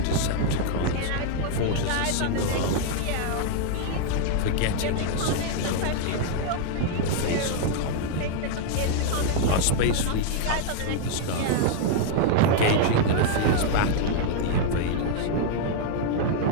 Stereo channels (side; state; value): both; different; correlation -0.01